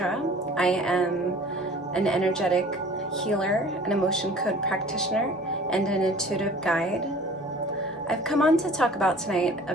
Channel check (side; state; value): both; normal; correlation 0.47